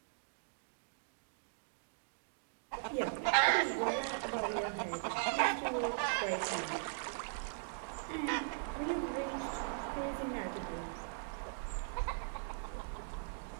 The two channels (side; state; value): left; silent; digital silence